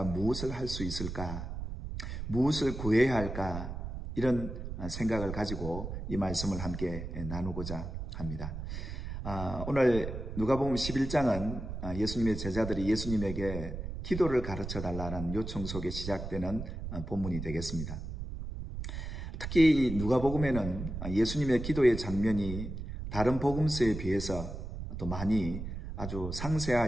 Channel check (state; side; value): noise; right; rumble, 7 dB below the sound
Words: 무엇을 할 수 있을까, 무엇을 구해야 할까, 이런 생각을 가지고 이 말씀을 함께 나누고자 합니다. 오늘 누가복음 11장은 예수님의 제자들이 예수님에게 기도를 가르쳐 달라는 요청 속에 시작되는 본문이 되겠습니다. 특히 누가복음에는 예수님의 기도의 장면이 다른 복음서에 비해서 또 많이 아주